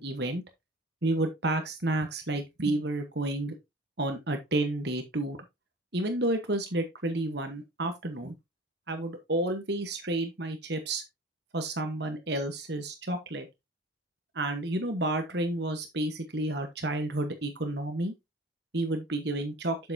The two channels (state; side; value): normal; both; correlation 0.42